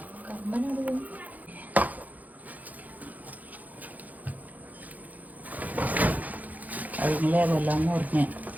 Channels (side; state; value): left; late; 0.079 ms